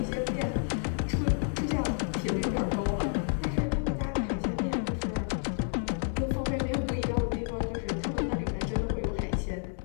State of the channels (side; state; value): right; silent; 58 dB below the other